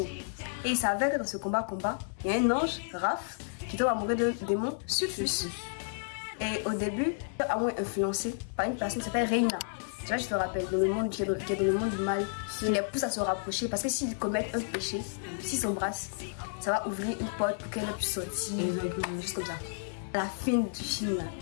Et il s'avère que dans ce combat, il y a un ange, Raph, qui tombe amoureux d'un démon, Sulfus. Et au début, il est amoureux influencé par une personne qui s'appelle Reina. Tu vois, je te rappelle, dans le monde, qui est dans le monde du mal, il les pousse à se rapprocher parce que s'ils commettent un péché, s'ils s'embrassent, ça va ouvrir une porte pour qu'elle puisse sortir, juste comme ça. À la fin du film, là,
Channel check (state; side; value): silent; right; digital silence